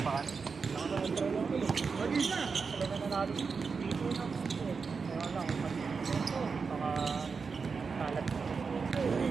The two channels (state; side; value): quieter; left; 5.1 dB